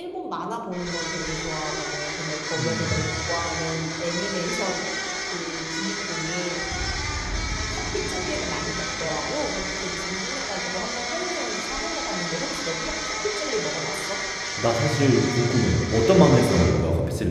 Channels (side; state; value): both; identical; correlation 1.00